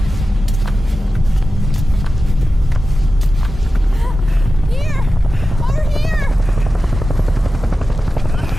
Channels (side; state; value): both; normal; correlation 0.93